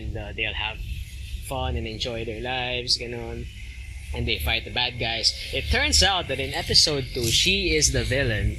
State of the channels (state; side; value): identical; both; correlation 1.00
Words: they'll have fun and enjoy their lives, and they fight the bad guys. It turns out that in episode 2, she is the villain,